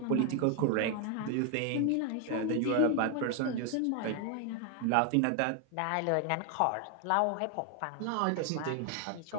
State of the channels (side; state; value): both; different; correlation 0.01